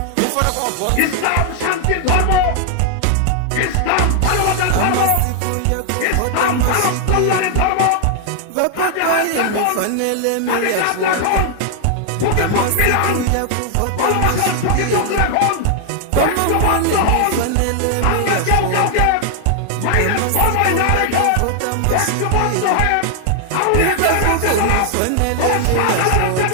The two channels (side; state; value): both; different; correlation 0.00